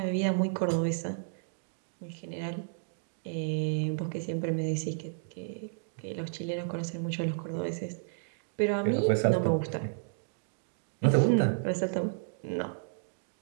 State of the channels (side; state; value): left; silent; digital silence